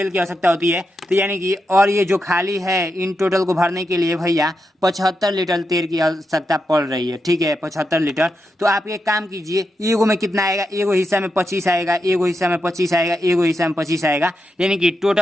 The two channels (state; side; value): normal; both; correlation 0.86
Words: की आवश्यकता होती है, तो यानी कि और ये जो खाली है इन टोटल को भरने के लिए भैया 75 लीटर तेल की आवश्यकता पड़ रही है, ठीक है, 75 लीटर। तो आप एक काम कीजिए, एगो में कितना आएगा, एगो हिस्सा में 25 आएगा, एगो हिस्सा में 25 आएगा, एगो हिस्सा में 25 आएगा, यानी कि